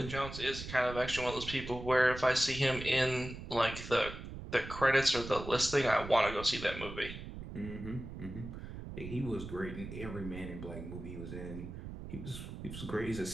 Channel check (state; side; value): noise; right; rumble, 10 dB below the sound